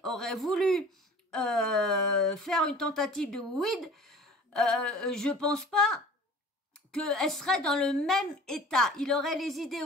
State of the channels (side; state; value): both; normal; correlation 0.45